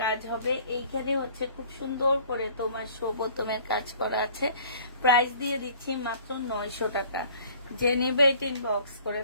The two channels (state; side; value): inverted; both; correlation -0.52